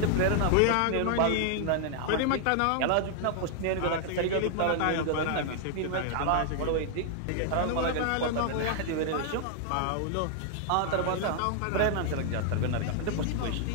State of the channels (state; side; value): different; both; correlation 0.00